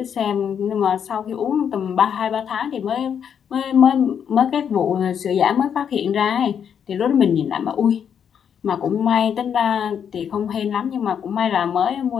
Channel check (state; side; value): quieter; right; 8.0 dB